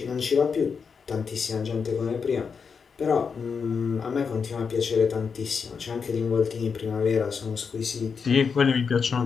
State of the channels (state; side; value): quieter; right; 5.8 dB